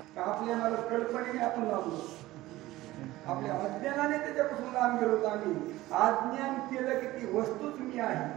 आपल्या मला कल्पनेने आपण लावलो, आपल्या अज्ञानाने त्याच्यापासून लांब गेलो. आम्ही अज्ञान केलं की ती वस्तूच मी आहे.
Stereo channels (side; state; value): left; quieter; 17.2 dB